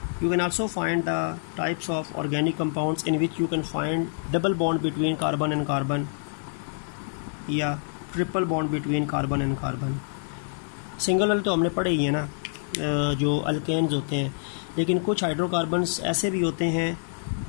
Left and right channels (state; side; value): silent; right; digital silence